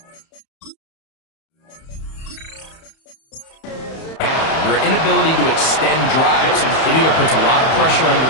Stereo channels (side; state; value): right; late; 31 ms